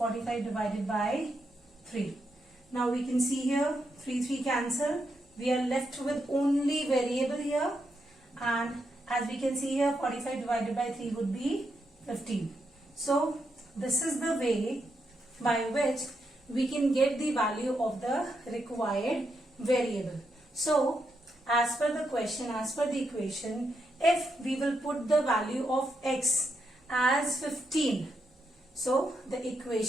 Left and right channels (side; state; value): both; normal; correlation 0.82